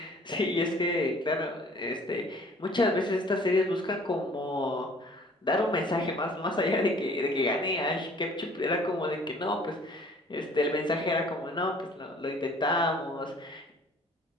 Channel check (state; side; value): normal; both; correlation 0.53